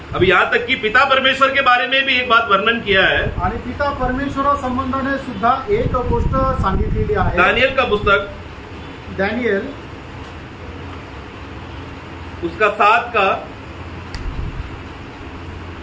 अब यहाँ तक कि पिता परमेश्वर के बारे में भी एक बात वर्णन किया है, आणि पिता परमेश्वर संबंधाने सुद्धा एक गोष्ट सांगितलेली आहे। दानियल का पुस्तक, दानियल उसका 7 का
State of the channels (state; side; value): identical; both; correlation 1.00